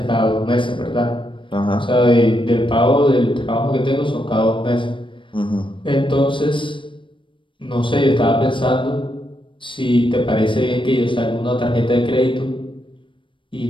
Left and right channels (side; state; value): right; late; 0.24 ms